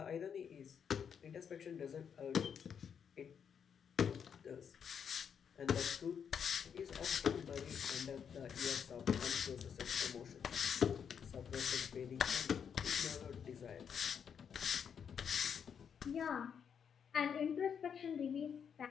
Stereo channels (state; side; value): quieter; right; 7.5 dB